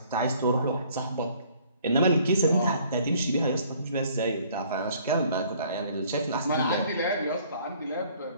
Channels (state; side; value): inverted; both; correlation -0.59